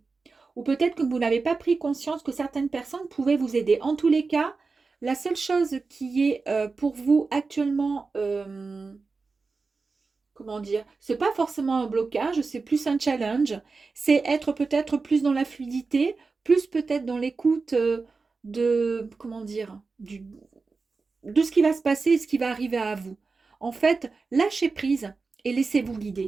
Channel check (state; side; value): quieter; left; 4.3 dB